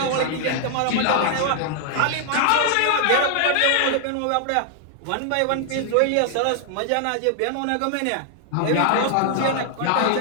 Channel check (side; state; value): both; different; correlation 0.00